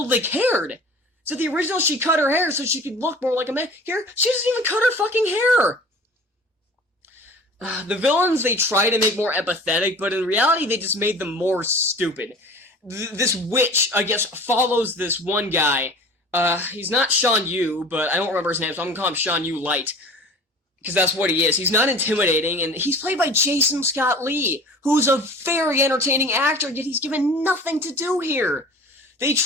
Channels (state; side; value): normal; both; correlation 0.42